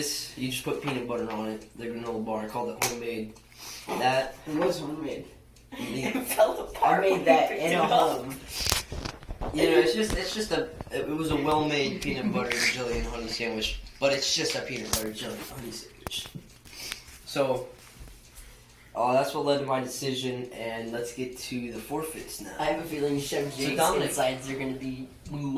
you just put peanut butter on it. The granola bar, I called it homemade. That It was homemade. it fell apart. I made that in a home. You know, it was a well-made peanut butter jelly and honey sandwich, but it's just a peanut butter jelly and honey sandwich. So, that's what led to my decision, and let's get to the forfeits now. I have a feeling Chef Jake's Dominic. insides are going to be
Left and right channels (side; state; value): both; identical; correlation 1.00